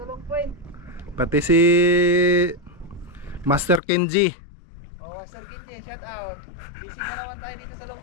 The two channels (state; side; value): drops out; right; at 3.8 s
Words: Long Point. Pati si Master Kenji. Oh, Sir Kinji, shoutout. Busy na naman tayo dito sa